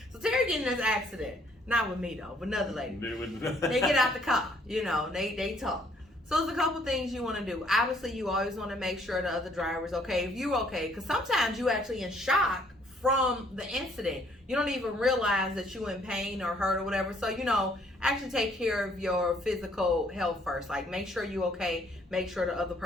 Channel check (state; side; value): normal; both; correlation 0.64